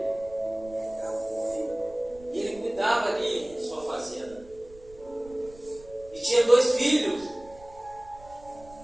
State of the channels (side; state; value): right; noise; rumble, 22 dB below the sound